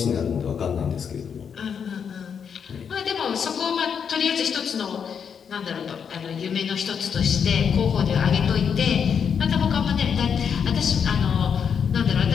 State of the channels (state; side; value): quieter; right; 7.1 dB